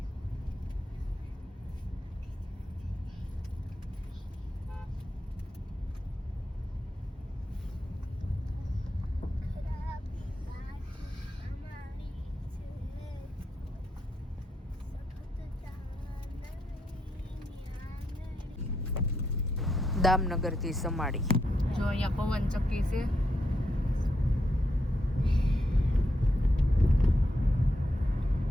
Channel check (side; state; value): both; normal; correlation 0.81